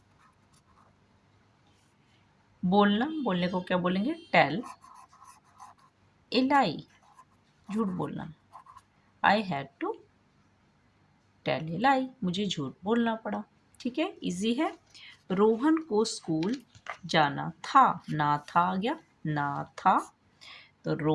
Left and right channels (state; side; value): identical; both; correlation 1.00